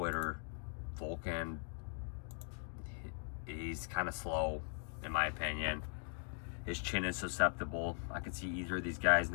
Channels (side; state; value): right; silent; 51 dB below the other